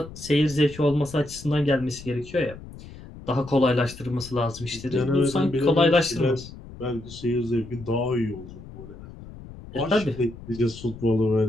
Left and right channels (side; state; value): left; noise; rumble, 16 dB below the sound